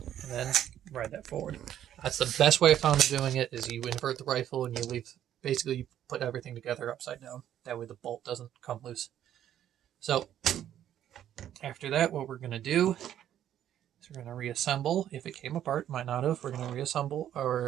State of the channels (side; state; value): left; quieter; 11.0 dB